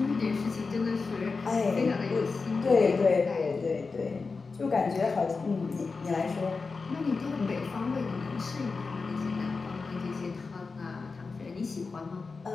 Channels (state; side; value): quieter; right; 4.4 dB